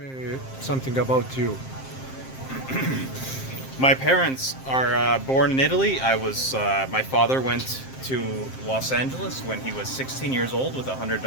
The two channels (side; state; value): right; late; 7.6 ms